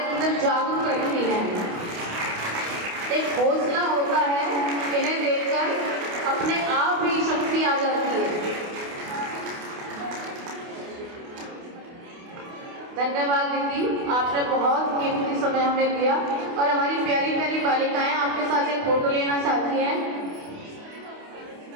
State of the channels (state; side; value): late; left; 28 ms